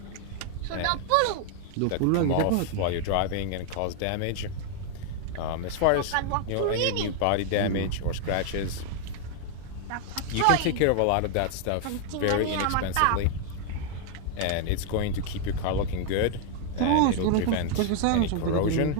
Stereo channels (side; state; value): both; different; correlation 0.00